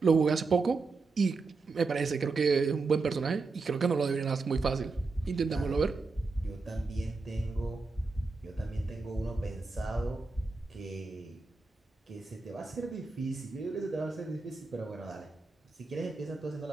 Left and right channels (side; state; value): left; quieter; 4.0 dB